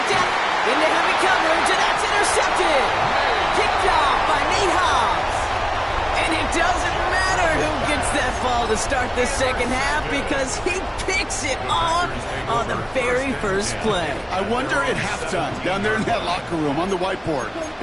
down. Into heavy coverage, and that's intercepted. Kicked off by Nate Hobbs. And it doesn't matter who gets that ball to start the second half because he picks it off on the very first play. I wonder at halftime, down there in that locker room on the whiteboard,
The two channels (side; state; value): both; identical; correlation 1.00